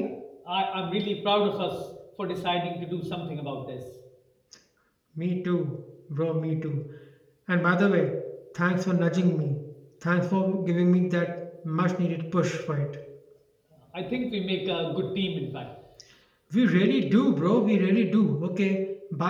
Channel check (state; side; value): identical; both; correlation 1.00